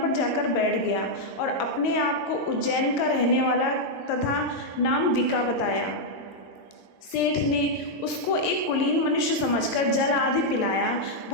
जाकर बैठ गया और अपने आप को उज्जैन का रहने वाला तथा नाम विका बताया। सेठ ने उसको एक कुलीन मनुष्य समझकर जल आदि पिलाया।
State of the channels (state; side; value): late; right; 22 ms